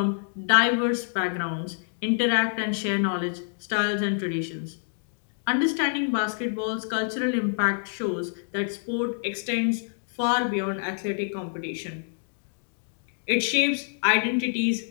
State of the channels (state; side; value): silent; right; digital silence